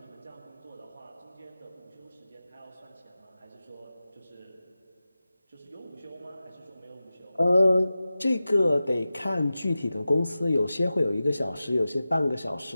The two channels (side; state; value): both; inverted; correlation -0.95